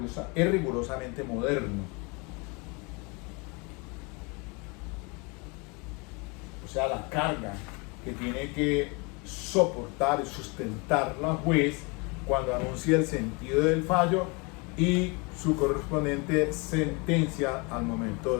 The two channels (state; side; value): quieter; right; 29.6 dB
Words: rigurosamente moderno. O sea, la carga que tiene que soportar y sustentar la juez cuando anuncia el sentido del fallo y su correspondiente sentencia al momento